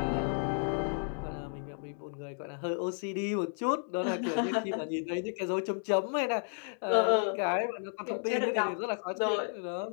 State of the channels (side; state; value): right; silent; 56 dB below the other